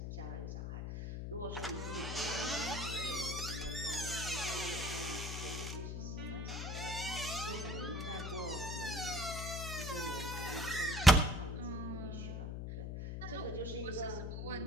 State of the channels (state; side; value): noise; left; hum, 4 dB below the sound